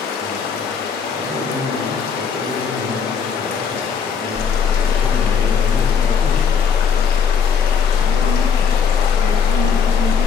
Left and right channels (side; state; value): right; quieter; 6.6 dB